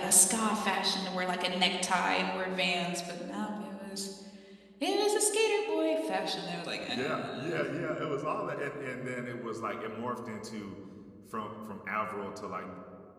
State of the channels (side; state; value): both; identical; correlation 1.00